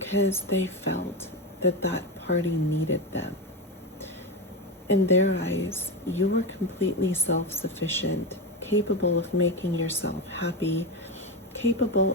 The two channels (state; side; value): normal; both; correlation 0.16